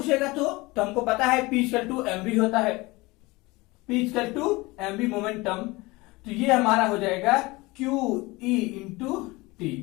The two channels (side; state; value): right; quieter; 22.6 dB